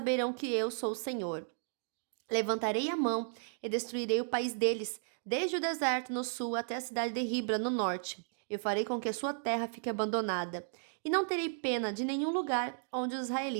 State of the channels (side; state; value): left; silent; digital silence